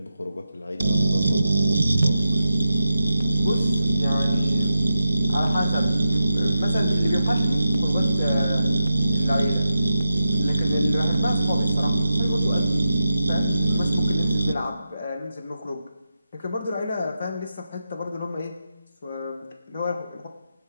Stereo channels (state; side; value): inverted; both; correlation -0.89